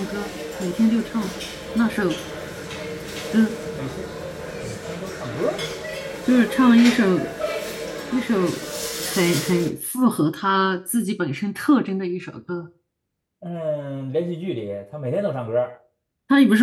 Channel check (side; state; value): both; identical; correlation 1.00